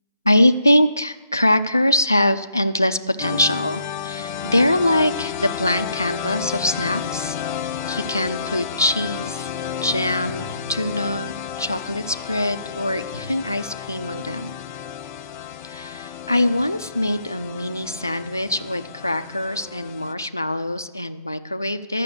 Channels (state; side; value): inverted; both; correlation -0.76